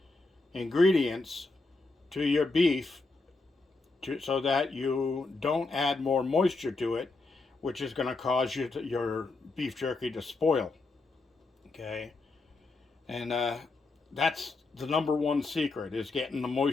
ingredients to your beef so that you don't add more moisture to it, which is going to cause your beef jerky to spoil. Okay, and that's the #1 secret, is getting the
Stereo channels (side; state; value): right; quieter; 3.5 dB